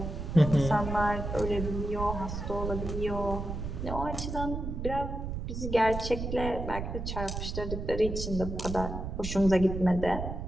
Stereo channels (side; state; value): right; noise; rumble, 5 dB below the sound